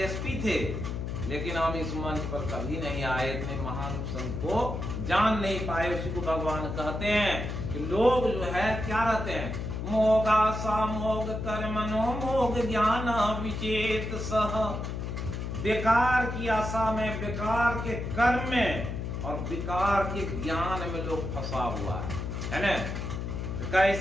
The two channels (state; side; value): noise; left; hum, 4 dB below the sound